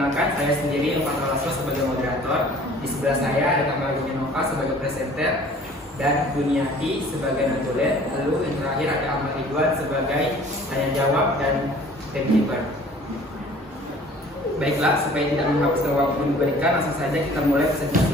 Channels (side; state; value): both; normal; correlation 0.50